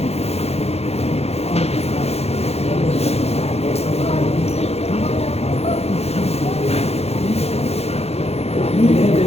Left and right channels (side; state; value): right; late; 0.30 ms